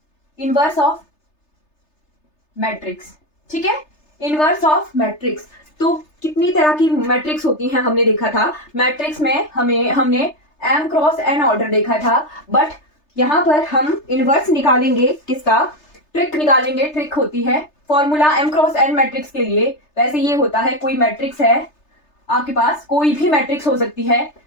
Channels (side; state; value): right; late; 3.3 ms